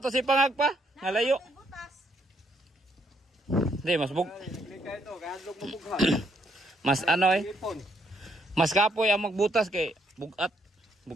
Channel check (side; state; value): both; normal; correlation 0.72